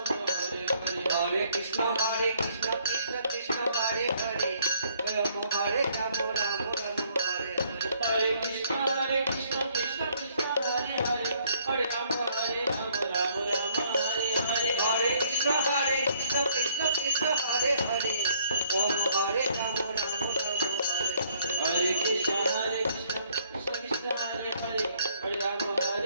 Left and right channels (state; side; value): inverted; both; correlation -0.64